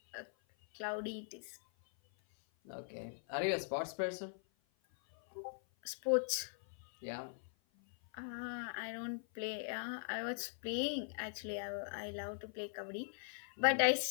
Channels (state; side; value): silent; right; 50 dB below the other